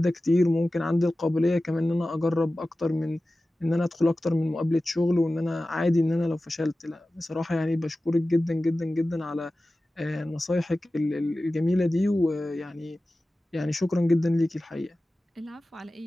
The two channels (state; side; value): normal; both; correlation 0.96